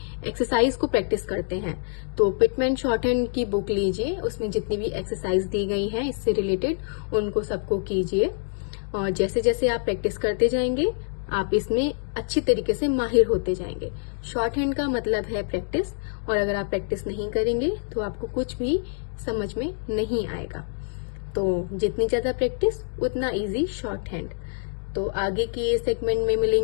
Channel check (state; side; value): silent; right; 55 dB below the other